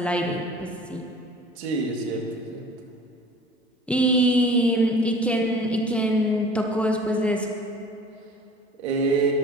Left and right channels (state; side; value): normal; both; correlation 0.45